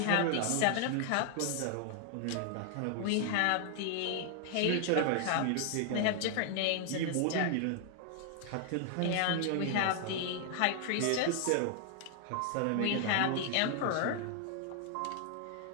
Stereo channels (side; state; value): both; different; correlation 0.00